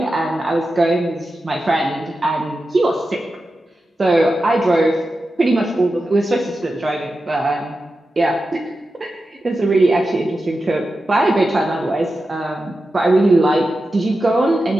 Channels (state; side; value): normal; both; correlation 0.91